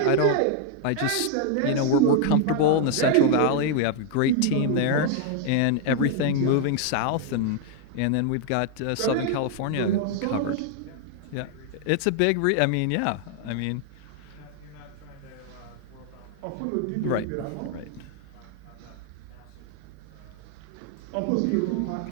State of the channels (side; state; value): both; different; correlation 0.00